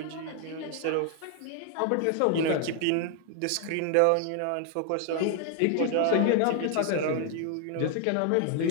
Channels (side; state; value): both; different; correlation 0.00